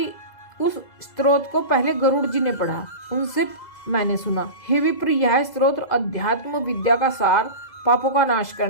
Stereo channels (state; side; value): late; right; 2.0 ms